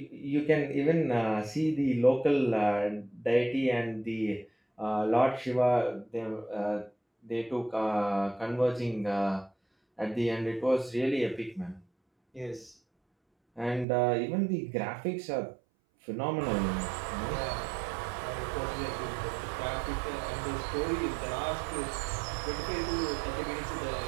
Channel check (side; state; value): left; drops out; at 13.9 s